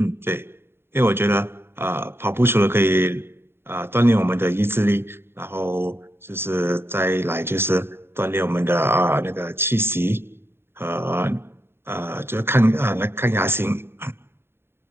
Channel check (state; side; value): late; left; 0.11 ms